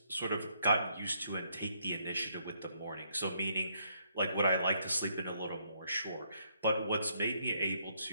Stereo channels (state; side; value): inverted; both; correlation -0.72